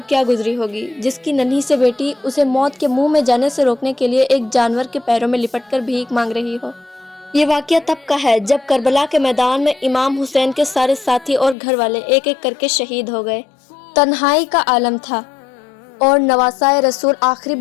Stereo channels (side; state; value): right; drops out; at 11.6 s